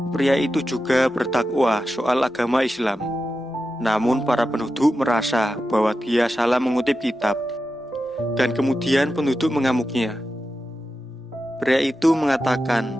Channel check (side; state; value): both; normal; correlation 0.90